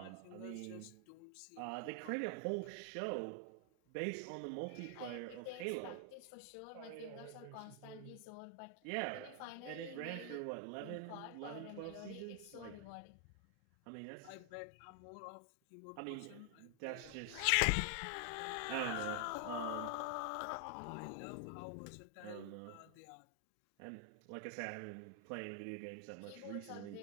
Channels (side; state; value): both; different; correlation 0.00